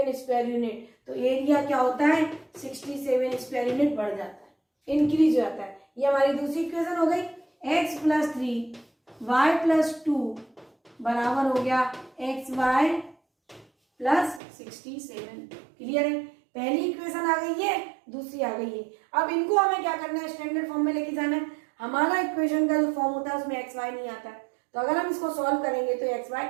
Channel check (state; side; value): drops out; left; at 14.4 s